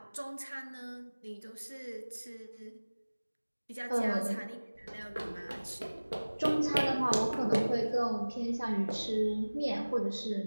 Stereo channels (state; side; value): inverted; both; correlation -1.00